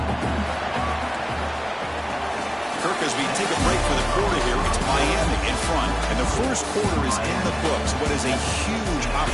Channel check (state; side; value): identical; both; correlation 1.00